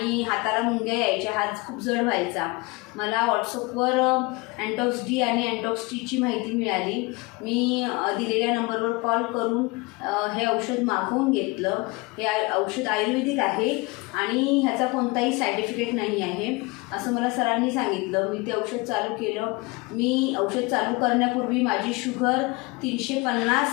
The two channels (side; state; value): right; quieter; 25.0 dB